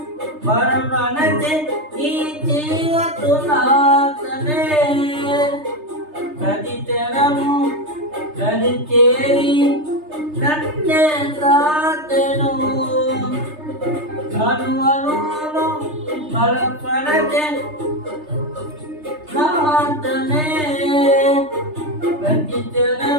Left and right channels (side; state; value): left; late; 3.3 ms